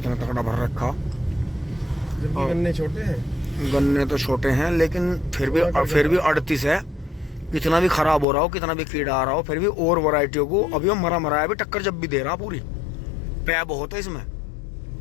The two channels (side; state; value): right; drops out; at 8.2 s